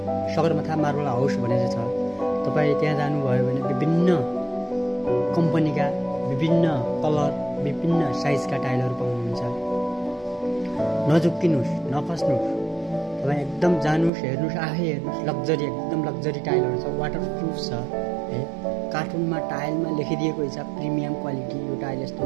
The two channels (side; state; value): left; drops out; at 14.1 s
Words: सगरमाथा मार्बल हाउस भनेर छ। तपाई त्यहाँ जानुभयो भने विभिन्न कम्पनीका, विभिन्न कलर, विभिन्न साइजका टाइलहरू पाउनुहुन्छ। नझुक्किनुस्, नफस्नुस्। तपाई एकदम जानुस्, हेर्नुस्, आफै हेर्नुस्। लग्जरी, एकदम लग्जरी टाइलहरू छ, वाटरप्रुफ छ है। कार्टुनमा टाइलमा लेखिदिएको हुन्छ प्रिमियम क्वालिटी, यो टाइल यस्तो